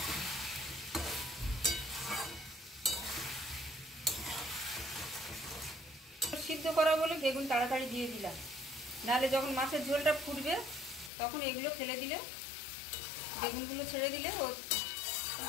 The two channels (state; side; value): drops out; right; at 11.1 s